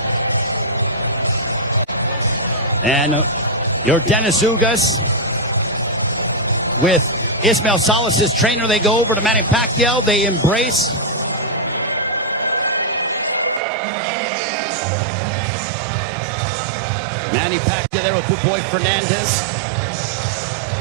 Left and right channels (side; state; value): left; drops out; at 13.6 s